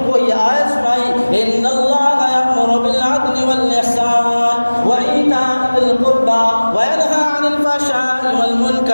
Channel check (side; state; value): both; inverted; correlation -1.00